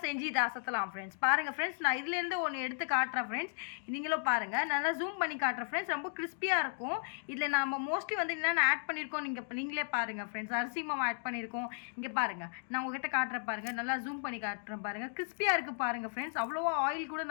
செஞ்சு இதை அசத்தலாம் ஃப்ரெண்ட்ஸ். பாருங்கள் ஃப்ரெண்ட்ஸ், நான் இதுலேருந்து ஒன்று எடுத்து காட்டுறேன் ஃப்ரெண்ட்ஸ். நீங்களும் பாருங்கள், நல்லா ஜூம் பண்ணி காட்டுறேன் ஃப்ரெண்ட்ஸ். ரொம்ப கிறிஸ்பியாக இருக்கும். இதில் நம்ம மோஸ்ட்லி வந்து என்னென்ன ஆட் பண்ணியிருக்கோம் நீங்களே பாருங்கள் ஃப்ரெண்ட்ஸ். அரிசி மாவு ஆட் பண்ணியிருக்கோம். இங்கே பாருங்கள், நான் உங்ககிட்ட காட்டுறேன் பாருங்கள், நல்லா ஜூம் பண்ணி காட்டுறேன் பாருங்கள். கிறிஸ்பியாக இருக்குது பாருங்கள் ஃப்ரெண்ட்ஸ். அவ்வளோவா ஆயில் கூட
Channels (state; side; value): silent; right; digital silence